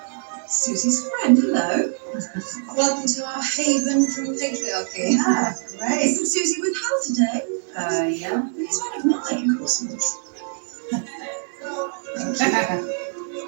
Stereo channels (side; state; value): left; silent; digital silence